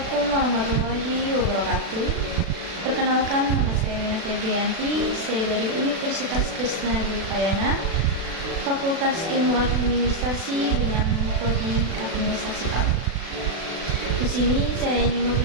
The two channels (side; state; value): left; late; 36 ms